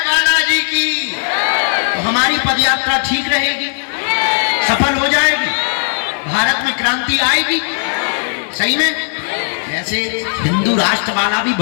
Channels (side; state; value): right; silent; digital silence